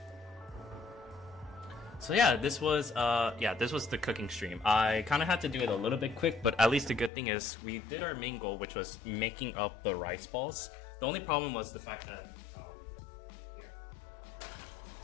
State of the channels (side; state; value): right; drops out; at 7.1 s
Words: So yeah, this was the cooking stream. I kind of had to do it a little bit quick, but at least the good thing is we did our main goal, which was making up the rice balls. The only problem was the fact that